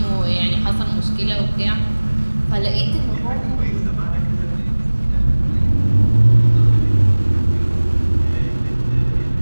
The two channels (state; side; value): inverted; both; correlation -1.00